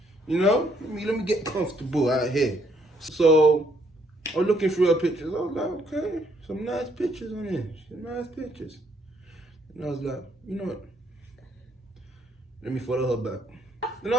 You know, let me get comfortable out here. So I was looking through her pictures. I was like, okay, some nice pictures on here. Some nice pictures. And I was like, you know what? Let me follow her back. And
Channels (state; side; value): normal; both; correlation 0.69